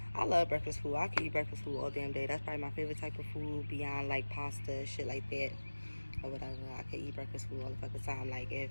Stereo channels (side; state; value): both; inverted; correlation -1.00